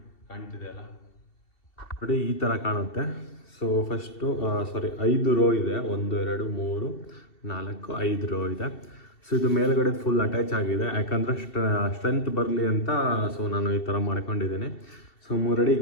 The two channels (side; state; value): right; late; 2.7 ms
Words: ಕಾಣ್ತಿದೆ ಅಲ್ಲ, ನೋಡಿ ಈ ಥರ ಕಾಣುತ್ತೆ. ಸೊ ಫಸ್ಟು 5 ರೋ ಇದೆ. 1 2 3 4 5 ರೋ ಇದೆ. ಸೊ ಇದು ಮೇಲ್ಗಡೆ ಫುಲ್ ಅಟ್ಯಾಚ್ ಆಗಿದೆ, ಯಾಕಂದರೆ ಸ್ಟ್ರೆಂತ್ ಬರಲಿ ಅಂತ. ಸೊ ನಾನು ಈ ಥರ ಮಾಡ್ಕೊಂಡಿದ್ದೀನಿ. ಸೊ 3 ಅಡಿ